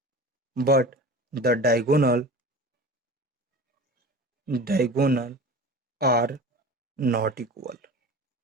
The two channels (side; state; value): both; normal; correlation 0.35